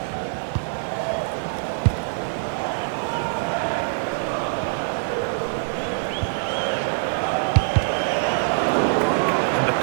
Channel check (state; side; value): silent; left; digital silence